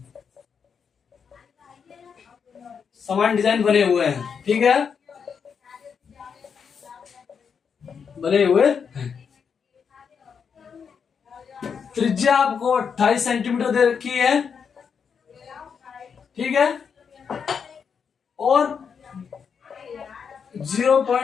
बने हुए हैं। ठीक है, बने हुए हैं। त्रिज्या आपको 28 सेंटीमीटर दे रखी है। ठीक है, और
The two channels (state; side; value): quieter; right; 6.5 dB